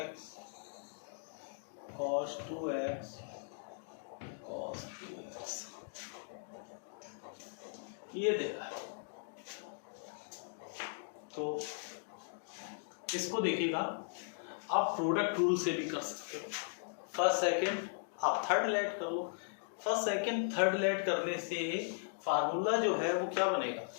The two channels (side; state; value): right; silent; digital silence